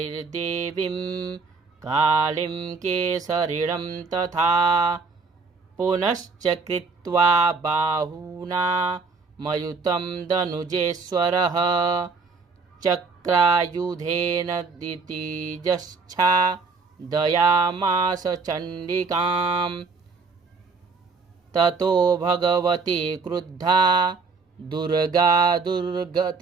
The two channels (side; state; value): left; quieter; 4.5 dB